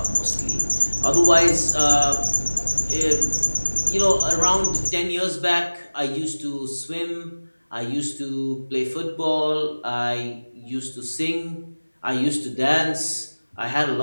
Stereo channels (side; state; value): both; inverted; correlation -1.00